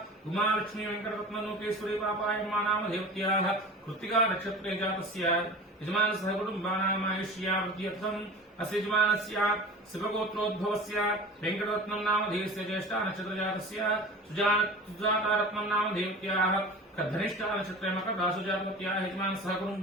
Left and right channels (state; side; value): normal; both; correlation 0.37